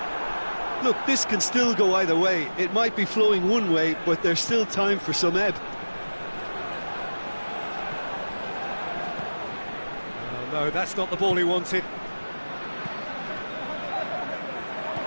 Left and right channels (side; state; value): both; inverted; correlation -1.00